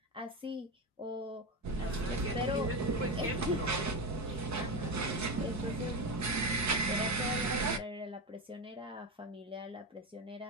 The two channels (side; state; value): both; normal; correlation 0.17